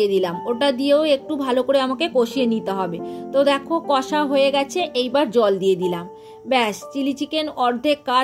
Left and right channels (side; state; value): both; identical; correlation 1.00